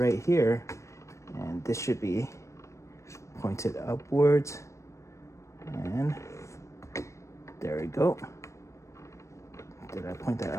here, and this should be pointed upwards. And there we go. Did I point that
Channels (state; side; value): late; right; 0.15 ms